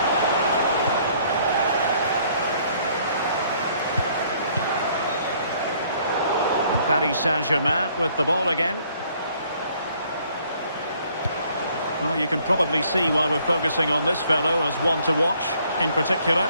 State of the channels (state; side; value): inverted; both; correlation -0.63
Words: And Paris Saint-Germain with the ball again. Well, you can probably see why we're focusing on this fellow as one to watch in particular.